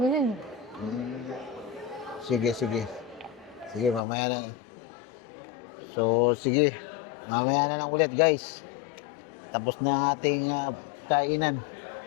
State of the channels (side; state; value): right; drops out; at 4.0 s